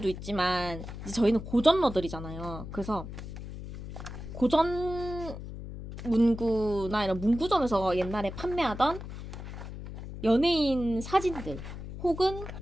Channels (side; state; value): left; noise; hum, 10 dB below the sound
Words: 있지만 이제 저희는 고전러들이잖아요. 그래서 고전 문구나 이런 문구점에서 옛날에 판매하던 연예인 사진들 혹은